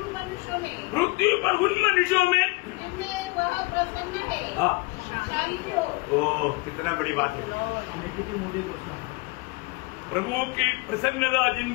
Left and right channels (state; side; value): quieter; right; 25.9 dB